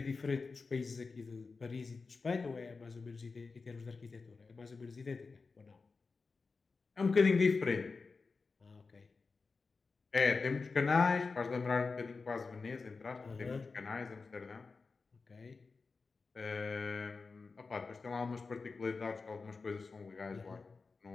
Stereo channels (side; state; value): right; quieter; 4.4 dB